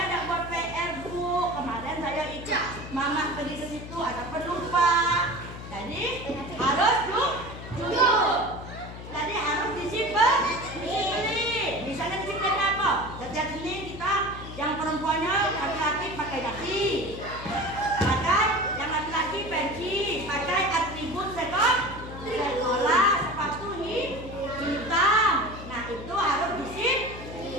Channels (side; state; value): left; noise; hum, 11 dB below the sound